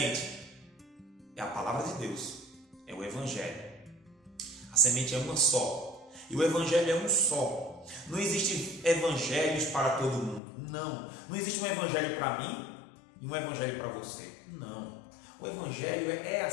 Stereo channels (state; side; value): drops out; right; at 10.4 s